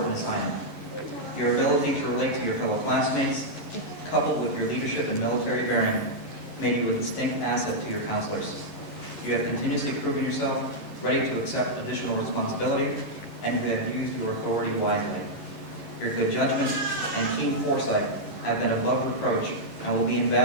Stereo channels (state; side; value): late; right; 11 ms